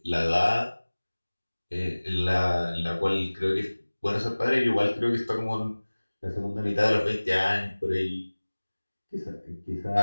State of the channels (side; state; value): both; inverted; correlation -1.00